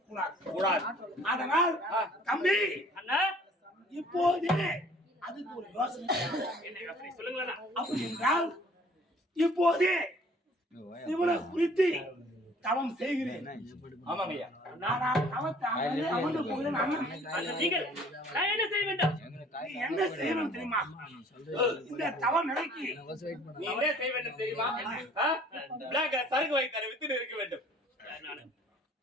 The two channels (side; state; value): both; normal; correlation 0.54